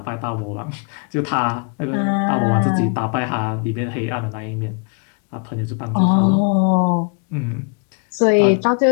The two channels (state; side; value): quieter; right; 39.4 dB